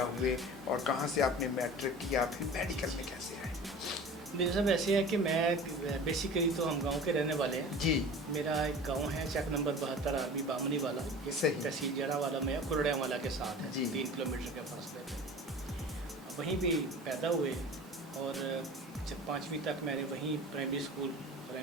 हुए और कहाँ से आपने मैट्रिक किया, फिर मेडिकल में कैसे आए? मेरे साहब ऐसे है कि मैं बेसिकली तो हम गांव के रहने वाले हैं जी। मेरा एक गांव है चक नंबर 72 आर्मी बामनी वाला, सही। तहसील जड़ा वाला में कुरड़िया वाला के साथ है जी। 3 किलोमीटर के फासले पे। वहीं भी पैदा हुए और जब 5वीं तक मैंने वहीं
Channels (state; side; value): normal; both; correlation 0.39